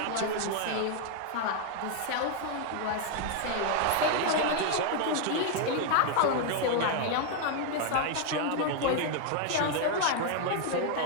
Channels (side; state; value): both; different; correlation 0.00